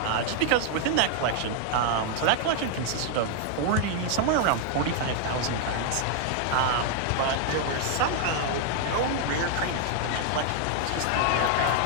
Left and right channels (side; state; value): both; different; correlation 0.00